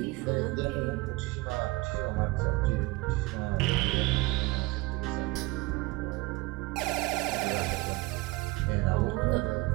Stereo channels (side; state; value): left; quieter; 22.3 dB